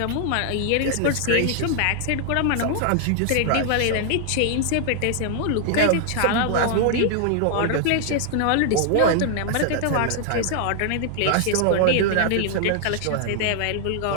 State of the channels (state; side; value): different; both; correlation 0.00